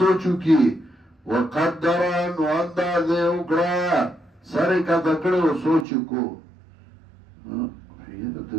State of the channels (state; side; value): drops out; left; at 5.9 s